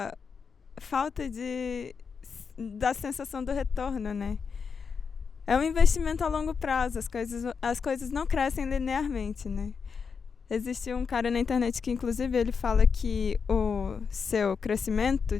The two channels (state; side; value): quieter; right; 5.8 dB